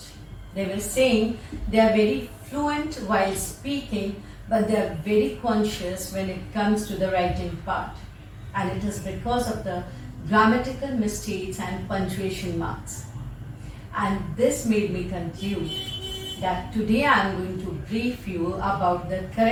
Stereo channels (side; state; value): both; identical; correlation 1.00